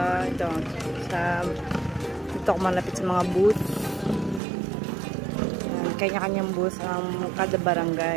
Dito ako malapit sa mga booth. Kanya-kanyang booth ang kada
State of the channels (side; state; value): left; drops out; at 4.4 s